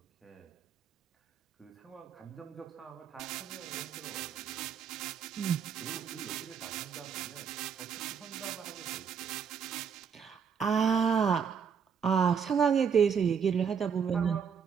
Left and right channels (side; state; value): left; quieter; 7.0 dB